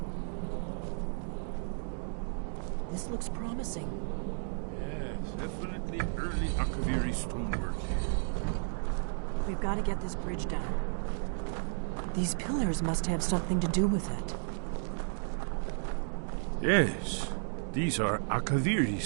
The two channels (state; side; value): silent; left; digital silence